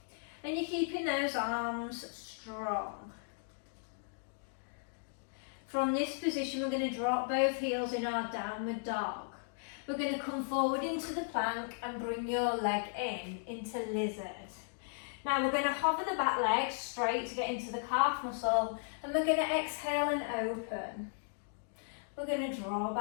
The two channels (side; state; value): right; silent; digital silence